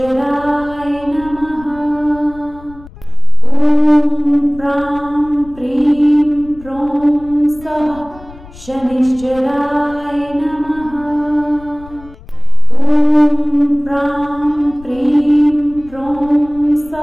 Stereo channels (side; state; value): left; noise; rumble, 20 dB below the sound